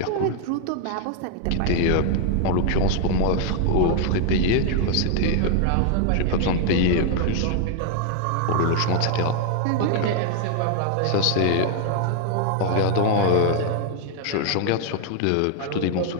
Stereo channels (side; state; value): both; different; correlation 0.00